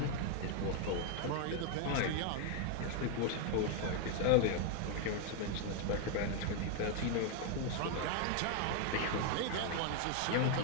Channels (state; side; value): different; both; correlation 0.00